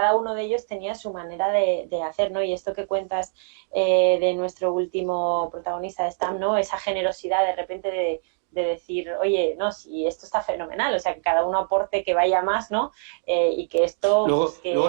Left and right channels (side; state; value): left; silent; digital silence